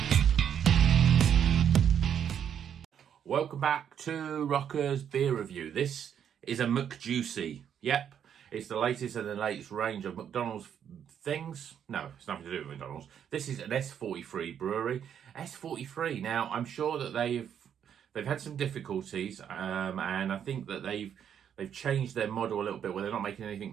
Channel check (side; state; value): left; quieter; 8.7 dB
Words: Welcome back to Rocker's Beer Review. This is a McJuicy. Yep, it's the latest in the latest range of McDonald's things. No, it's nothing to do with McDonald's. This is an S43 Brewery. S43. Now, I'm sure that they've had some difficulties, and I think that they've changed their model a little bit, where they're not making